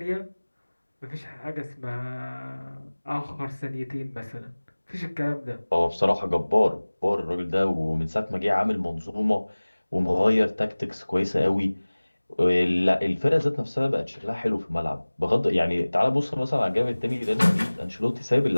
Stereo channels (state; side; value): inverted; both; correlation -1.00